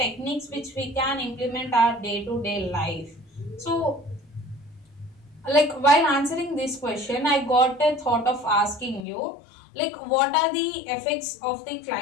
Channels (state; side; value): drops out; right; at 9.1 s